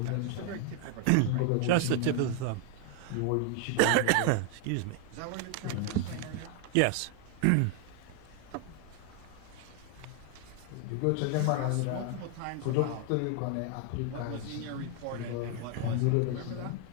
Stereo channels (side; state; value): both; different; correlation 0.00